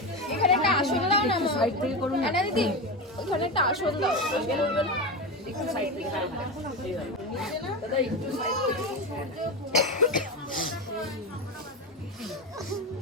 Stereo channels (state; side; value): normal; both; correlation 0.18